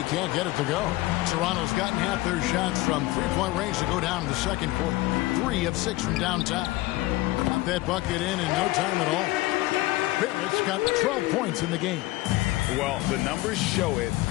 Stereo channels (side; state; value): right; quieter; 18.8 dB